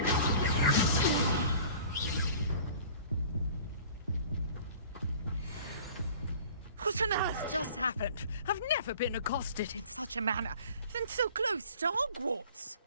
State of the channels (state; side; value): inverted; both; correlation -0.47